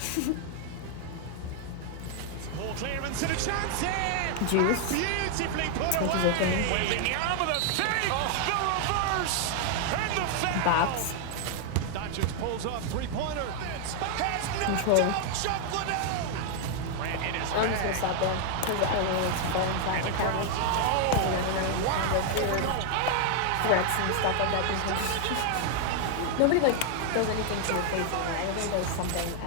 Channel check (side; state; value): both; different; correlation 0.00